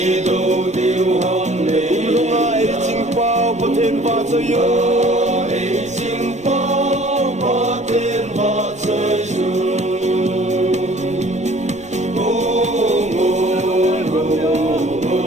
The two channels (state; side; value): normal; both; correlation 0.52